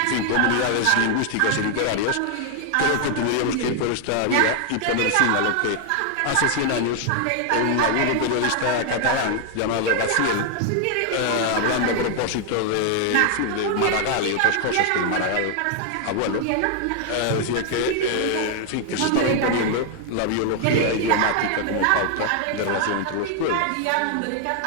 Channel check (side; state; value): both; different; correlation 0.00